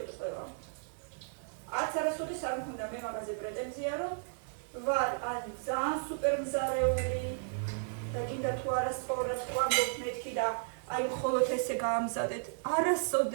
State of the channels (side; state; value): left; silent; digital silence